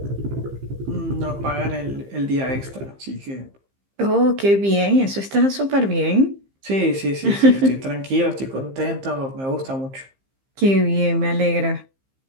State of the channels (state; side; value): late; left; 15 ms